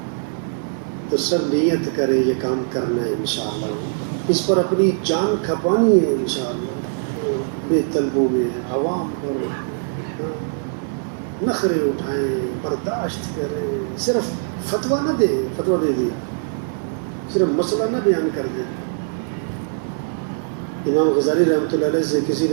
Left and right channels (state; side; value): silent; left; 59 dB below the other